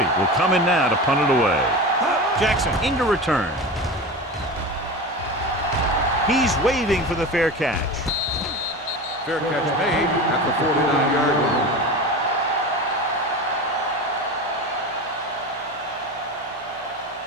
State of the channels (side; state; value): both; normal; correlation 0.28